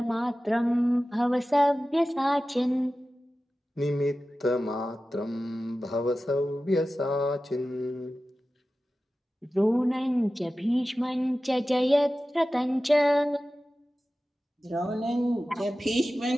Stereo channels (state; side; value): normal; both; correlation 0.95